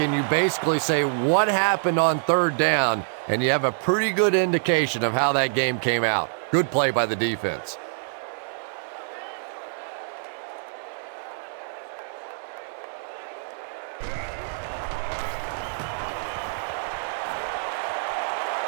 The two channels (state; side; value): silent; left; 61 dB below the other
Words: you basically say what happened on 3rd down, and you have a pretty good indication of how that game came out. Good play by the defense.